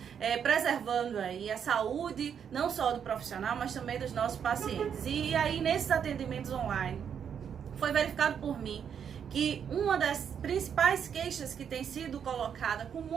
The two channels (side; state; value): left; quieter; 7.9 dB